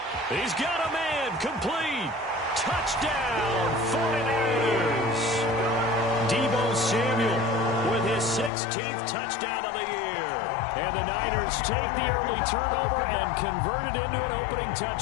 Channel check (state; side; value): drops out; right; at 8.5 s